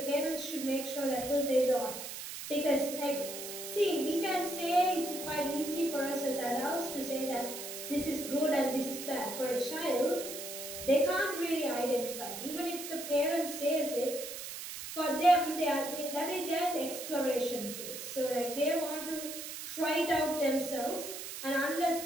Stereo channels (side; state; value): right; noise; hiss, 8 dB below the sound